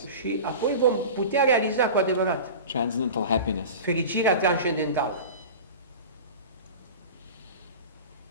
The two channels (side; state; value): both; inverted; correlation -0.33